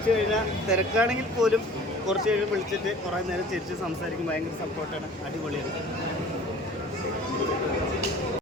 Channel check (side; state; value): both; normal; correlation 0.46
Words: കഴിഞ്ഞാൽ തിരക്കാണെങ്കിൽ പോലും കുറച്ച് കഴിഞ്ഞ് വിളിച്ചിട്ട് കുറേ നേരം ചിരിച്ച് സംസാരിക്കും, ഭയങ്കര സപ്പോർട്ടാണ്, അടിപൊളിയാണ്.